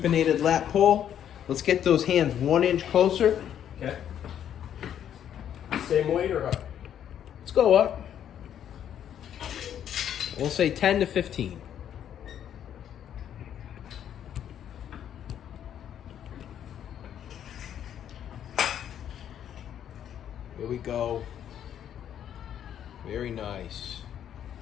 lat pull. Let's get those hands 1 inch closer. Okay. Same weight or up? Let's go up. We'll say 10 to 15. Here we go. Very nice.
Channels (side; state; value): right; quieter; 9.8 dB